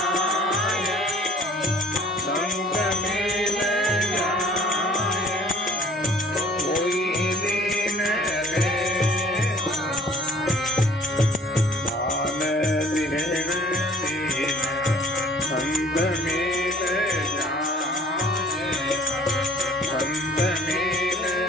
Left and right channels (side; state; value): both; normal; correlation 0.54